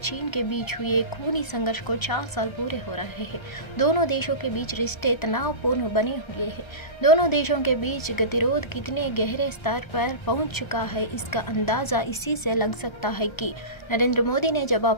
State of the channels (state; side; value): late; right; 1.3 ms